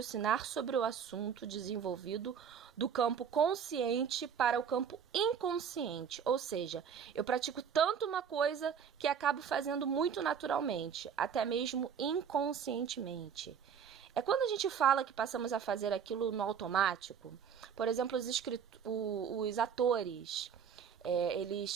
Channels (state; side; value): quieter; left; 7.5 dB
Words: sobre o assunto desenvolvido do campo consciente para o campo inconsciente. Ou seja, eu pratico tanto uma coisa que acabo fazendo muito naturalmente, até mesmo inconscientemente. É quando a gente fala que passamos a fazer aquilo no automático. Por exemplo, os atores,